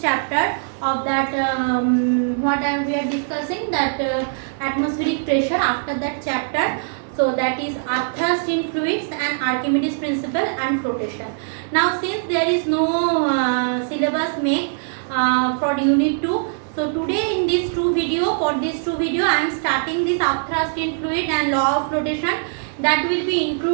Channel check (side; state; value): left; silent; 65 dB below the other